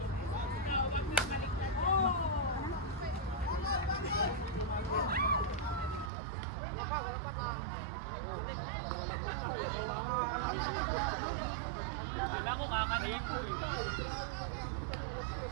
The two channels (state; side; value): drops out; left; at 6.1 s